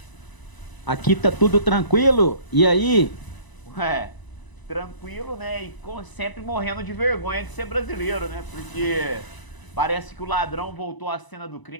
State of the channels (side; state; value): right; late; 1.0 ms